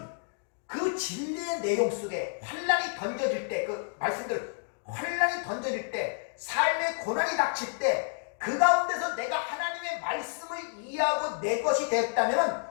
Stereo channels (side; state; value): right; silent; digital silence